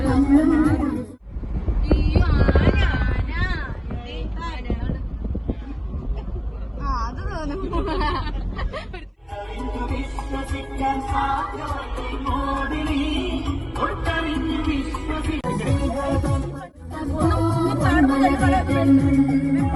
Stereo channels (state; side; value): identical; both; correlation 1.00